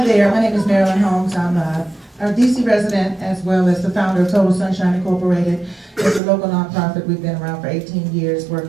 there, my name is Marilyn Holmes. I'm a DC resident as well as the founder of Total Sunshine Incorporated. It's a local nonprofit. We've been around for 18 years,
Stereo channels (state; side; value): drops out; left; at 6.2 s